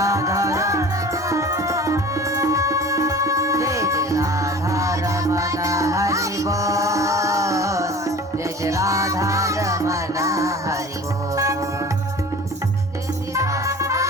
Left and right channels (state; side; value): normal; both; correlation 0.41